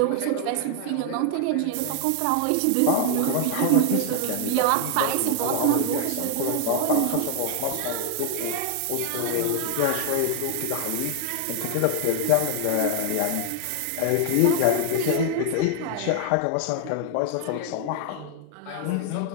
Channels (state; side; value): different; both; correlation 0.00